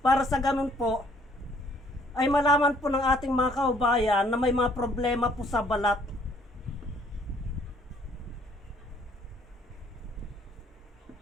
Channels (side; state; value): both; normal; correlation 0.62